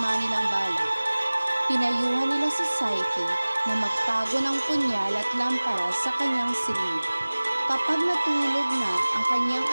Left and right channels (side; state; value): both; inverted; correlation -1.00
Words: nilang balak. Pinayuhan nila si Psyche na magtago ng punyal at lampara sa kanyang silid. Kapag natulog na ang kanyang